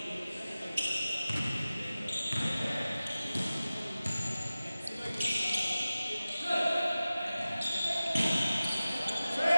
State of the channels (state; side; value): inverted; both; correlation -0.96